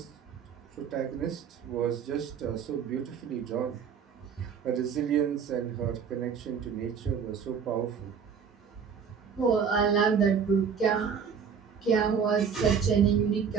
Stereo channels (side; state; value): left; quieter; 6.8 dB